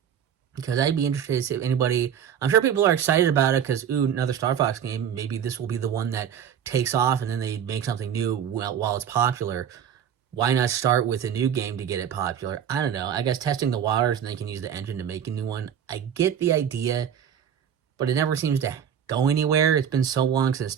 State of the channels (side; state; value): left; quieter; 8.7 dB